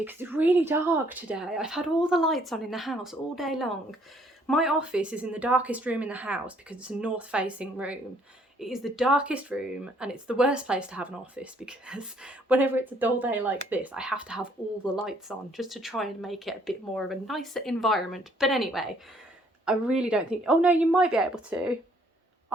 because it's really dark today. I've had all the lights on in the house all day long. My office is in the darkest room in the house because it's a north-facing room. It is the darkest room, and it's the worst place to have an office because whenever it's a dull day like this, I have to have all the lights on just to try and make it a bit more of a nicer environment. But anyway, I really don't think... Oh no, you might be able to.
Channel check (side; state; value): both; normal; correlation 0.64